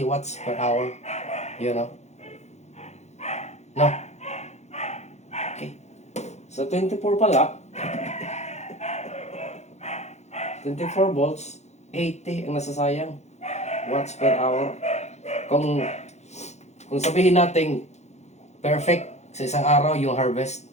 watts per hour. You know? No? Sa 24 pala, 24 volts, 80 ang nasasayang watts per hour. Kung sabihin natin perfect sa isang araw yung harvest,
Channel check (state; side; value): late; right; 0.33 ms